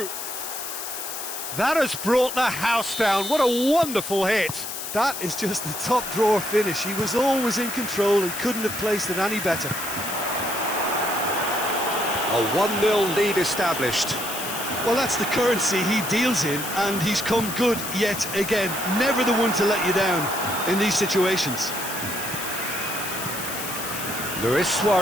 That has brought the house down. What a wonderful hit. That is just the top drawer finish. He was always in control and couldn't have placed it any better. A 1-0 lead established. Well, that's the currency he deals in, and he's come good yet again. Never the one to let you down in these situations. Luis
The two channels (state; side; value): noise; left; hiss, 7 dB below the sound